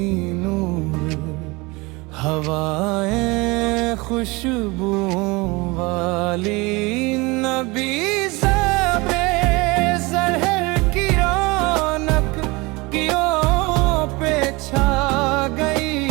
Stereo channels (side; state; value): left; quieter; 24.5 dB